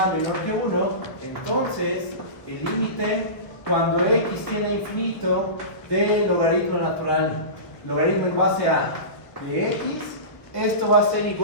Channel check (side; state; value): right; late; 1.0 ms